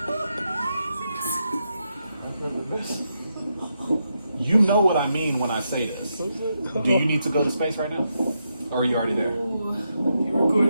You know what I mean when I say this. Do you need to go to space right now? Or are you already there? You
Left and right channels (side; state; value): both; inverted; correlation -0.83